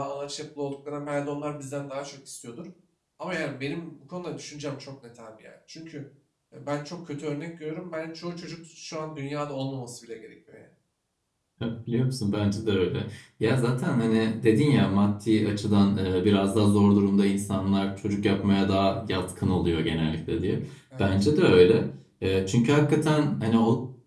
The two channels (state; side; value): identical; both; correlation 1.00